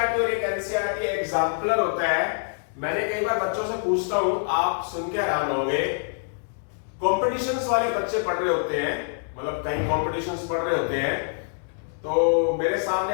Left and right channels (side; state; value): right; silent; digital silence